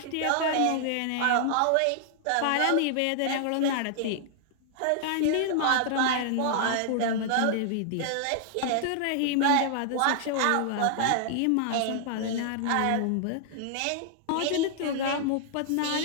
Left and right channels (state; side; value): different; both; correlation -0.01